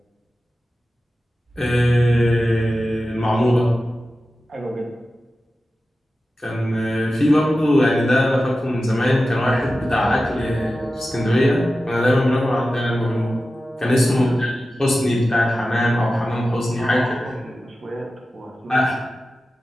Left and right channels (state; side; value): normal; both; correlation 0.94